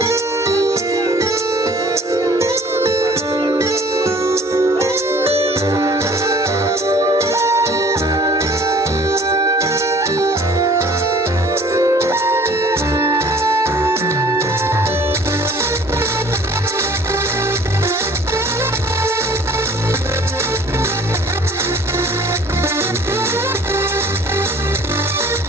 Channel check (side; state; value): both; normal; correlation 0.52